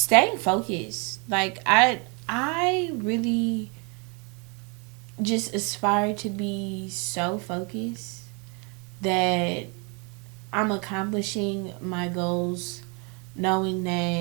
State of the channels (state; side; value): quieter; left; 32.8 dB